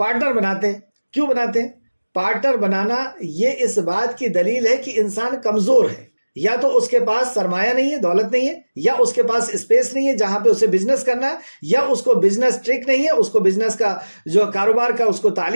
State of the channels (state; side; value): inverted; both; correlation -1.00